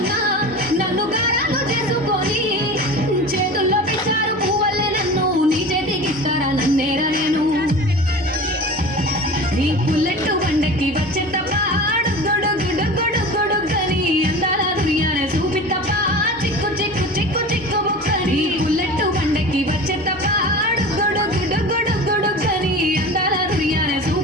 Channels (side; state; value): both; normal; correlation 0.34